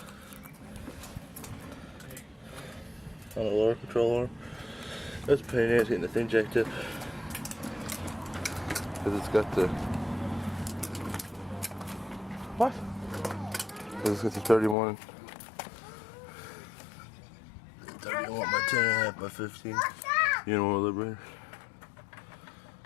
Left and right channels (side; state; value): right; drops out; at 14.8 s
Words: On the lower control arm. That's a pain in the ass getting the thing jacked up. Because it's got the... What? Because it's got the 31 by 10.5 by 15. You know what, liberator?